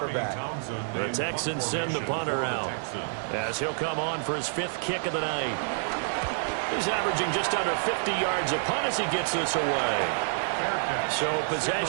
The Texans send the punter out as he'll come on for his 5th kick of the night. He's averaging just under 50 yards a punt as he gets this away. So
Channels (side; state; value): left; silent; 58 dB below the other